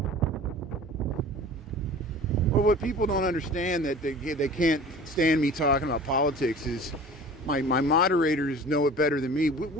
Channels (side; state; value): both; normal; correlation 0.42